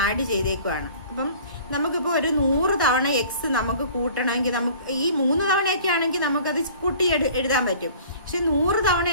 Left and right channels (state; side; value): inverted; both; correlation -0.48